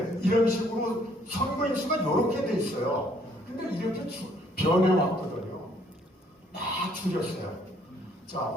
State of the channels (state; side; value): normal; both; correlation 0.64